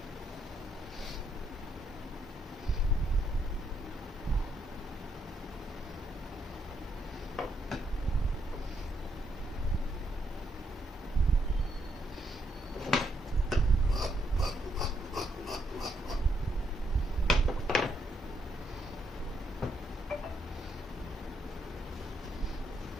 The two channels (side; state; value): both; normal; correlation 0.76